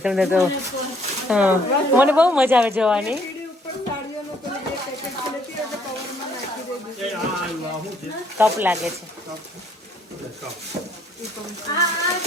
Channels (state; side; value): normal; both; correlation 0.65